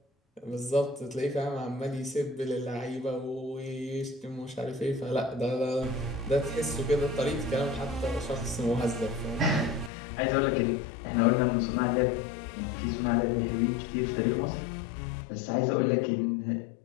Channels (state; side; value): drops out; right; at 9.9 s